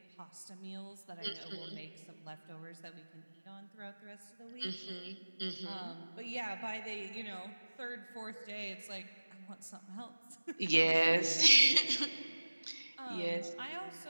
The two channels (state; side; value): inverted; both; correlation -1.00